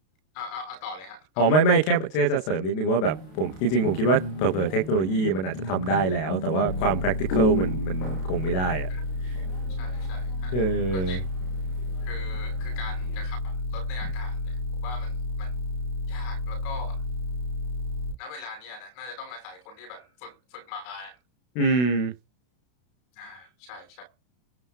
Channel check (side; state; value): right; late; 32 ms